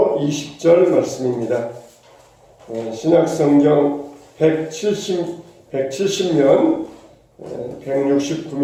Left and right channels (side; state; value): both; identical; correlation 1.00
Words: 20절 말씀입니다. 신약성경 170면